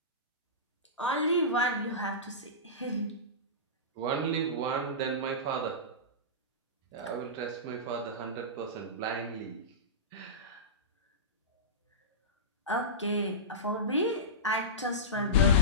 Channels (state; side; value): normal; both; correlation -0.18